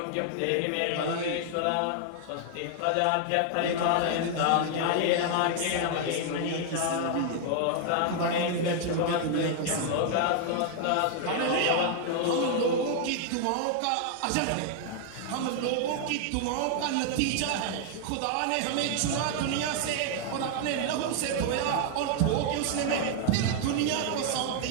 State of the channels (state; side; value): different; both; correlation 0.00